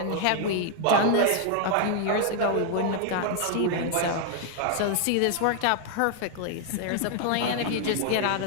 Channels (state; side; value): different; both; correlation 0.00